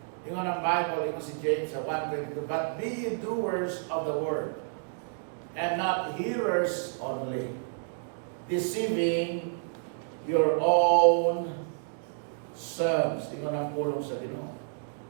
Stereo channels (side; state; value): left; silent; digital silence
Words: Yung ang Bible, yung si James sa 1:22, but be ye doers of the word, and not hearers only, deceiving your own selves. Ingon ang pulong sa Ginoo.